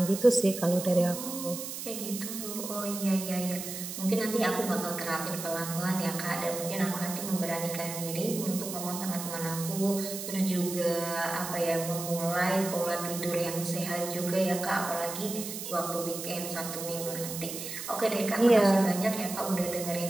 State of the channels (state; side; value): noise; right; hiss, 7 dB below the sound